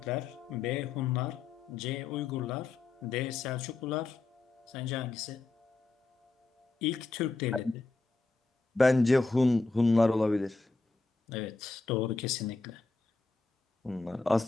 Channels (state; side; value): quieter; right; 3.6 dB